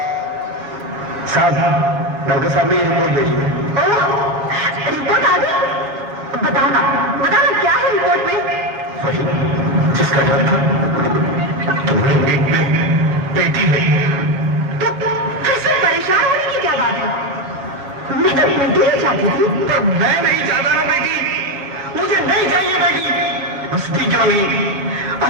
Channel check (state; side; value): late; left; 7.3 ms